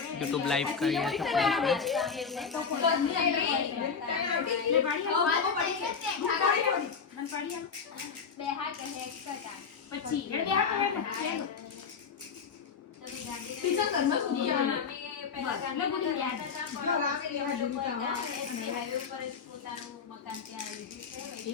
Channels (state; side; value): quieter; right; 5.9 dB